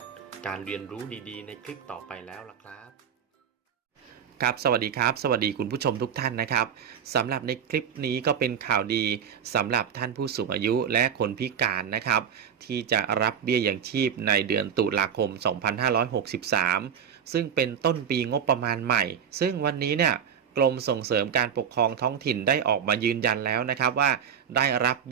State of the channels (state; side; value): quieter; left; 7.9 dB